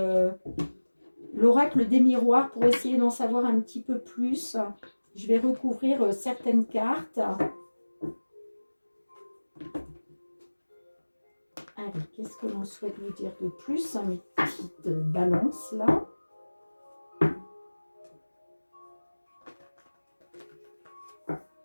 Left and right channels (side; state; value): both; inverted; correlation -1.00